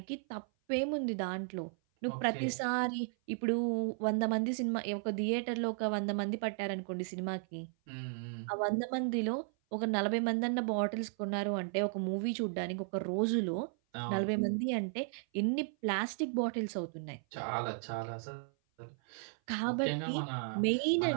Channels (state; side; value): silent; left; 54 dB below the other